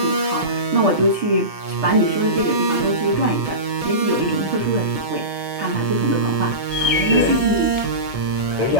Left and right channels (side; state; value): left; late; 1.7 ms